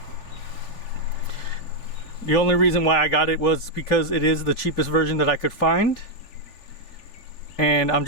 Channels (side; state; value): right; late; 3.4 ms